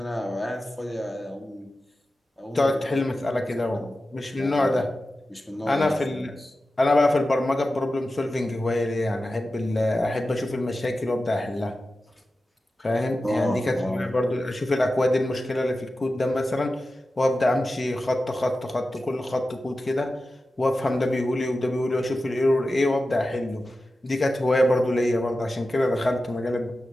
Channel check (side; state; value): both; normal; correlation 0.93